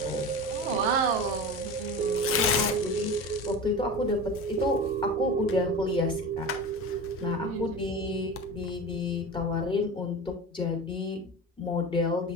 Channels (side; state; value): both; normal; correlation 0.30